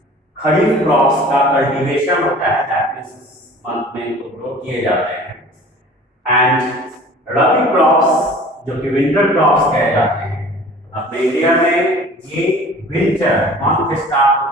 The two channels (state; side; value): normal; both; correlation 0.45